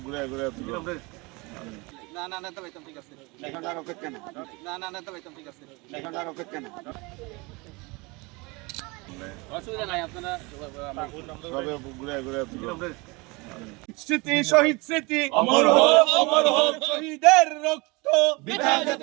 ঘুরে ঘুরে না না নেতা ভাইতাম ঠিক আছে এখানকার অপেক্ষা না না না নেতা ভাইতাম ঠিক আছে এখানকার অপেক্ষা না অসুবিধা নাই আপনারা সবে ঘুরে ঘুরে স্মৃতি শহীদ স্মৃতি অমর হোক, অমর হোক। শহীদের রক্ত বৃথা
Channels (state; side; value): quieter; left; 26.2 dB